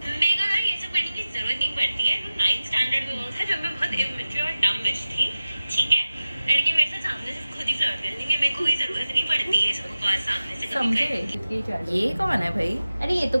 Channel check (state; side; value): inverted; both; correlation -0.95